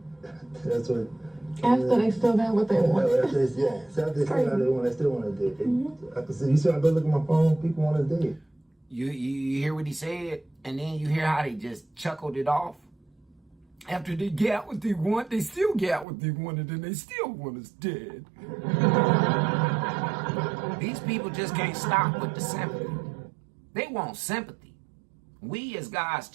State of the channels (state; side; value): drops out; left; at 16.1 s